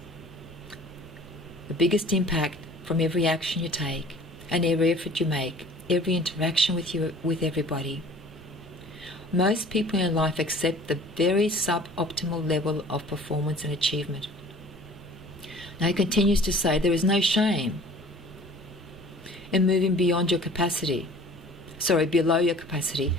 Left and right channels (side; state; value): both; normal; correlation 0.48